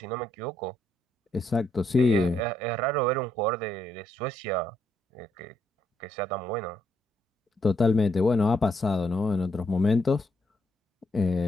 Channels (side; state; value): both; normal; correlation 0.75